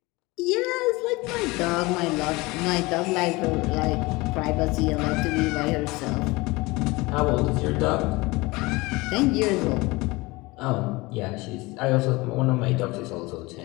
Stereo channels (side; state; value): right; quieter; 22.8 dB